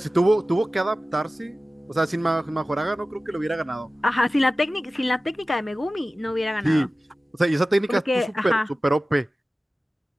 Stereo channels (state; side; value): normal; both; correlation 0.96